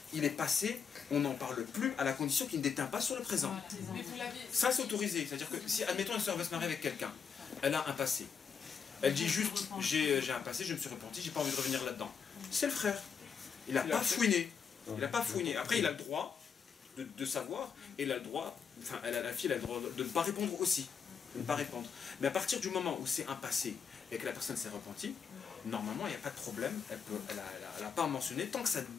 il est passé, on n'en parle plus à la condition qu'il ne déteint pas sur le présent. Ça c'est autorisé. C'est-à-dire que si, admettons, une soeur veut se marier avec quelqu'un, elle a un passé. Elle dit juste, j'ai un passé, je me suis repenti, j'ai pas envie de revenir là-dedans. C'est le frère. Il n'a pas fouiné. Il n'a pas fouiné. Après, il a le droit de savoir, et il a le droit, enfin, la fille a le droit de ne pas répondre aussi. De ne pas répondre. Mais à partir du moment où c'est un passé et que la personne s'est repentie, normalement, il n'y a pas de problème. Elle n'a pas à mentionner tant que ça ne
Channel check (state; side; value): quieter; right; 6.5 dB